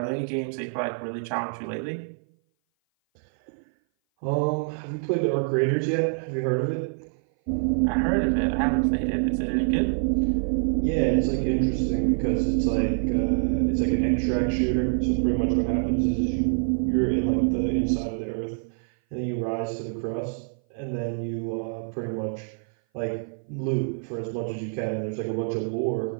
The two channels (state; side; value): silent; left; 57 dB below the other